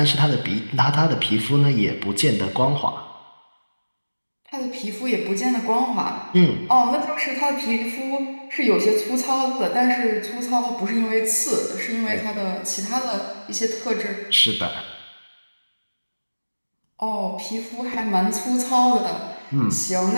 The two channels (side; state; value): both; inverted; correlation -1.00